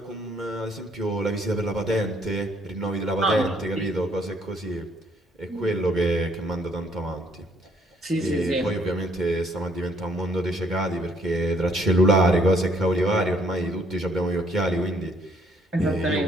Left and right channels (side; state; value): both; normal; correlation 0.66